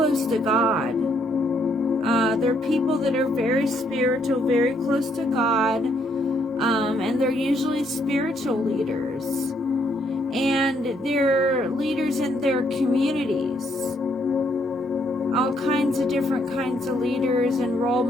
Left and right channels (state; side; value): normal; both; correlation 0.71